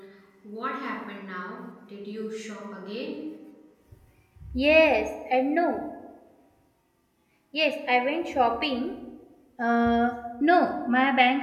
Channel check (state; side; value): identical; both; correlation 1.00